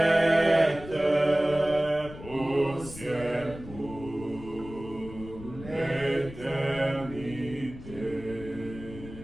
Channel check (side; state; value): left; noise; rumble, 14 dB below the sound